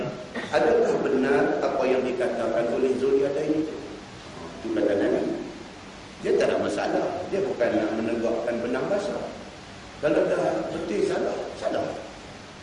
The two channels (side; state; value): both; identical; correlation 1.00